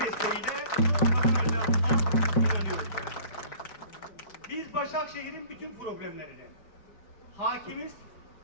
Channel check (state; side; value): late; right; 4.8 ms